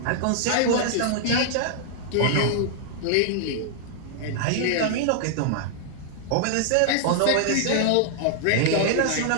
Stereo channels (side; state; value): both; different; correlation -0.01